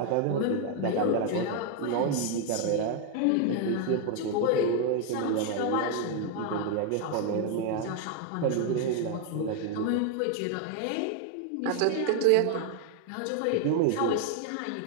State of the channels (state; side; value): different; both; correlation 0.01